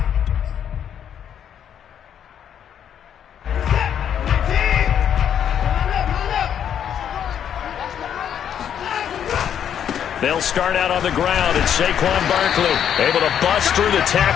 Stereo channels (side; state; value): right; quieter; 9.0 dB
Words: They'll start out on the ground, and Saquon Barkley able to bust through the